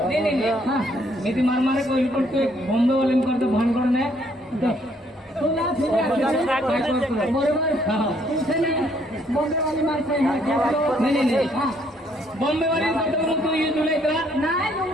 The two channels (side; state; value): both; normal; correlation 0.67